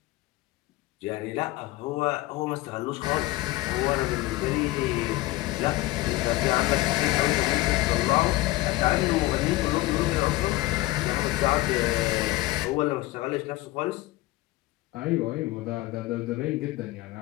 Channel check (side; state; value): right; quieter; 18.6 dB